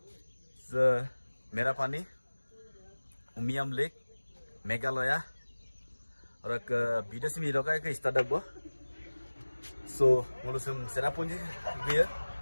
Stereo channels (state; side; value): inverted; both; correlation -1.00